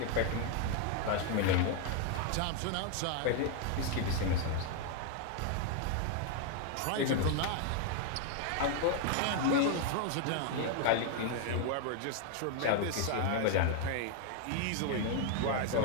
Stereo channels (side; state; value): both; different; correlation 0.00